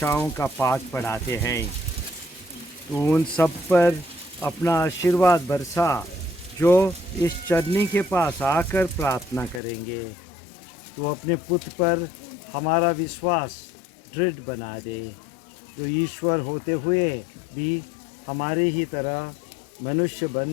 का पाठ पढ़ाते हैं। तो उन सब पर अपना आशीर्वाद बरसा जो इस चरनी के पास आकर प्रार्थना करेंगे। तो अपने पुत्र पर हमारा विश्वास दृढ़ बना दे, जो ईश्वर होते हुए भी हमारे ही तरह मनुष्य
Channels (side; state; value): right; drops out; at 9.6 s